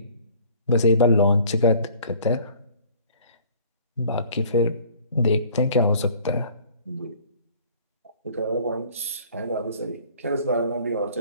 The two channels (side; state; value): both; inverted; correlation -0.53